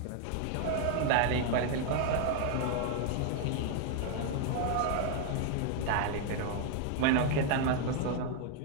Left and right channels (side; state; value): both; different; correlation 0.00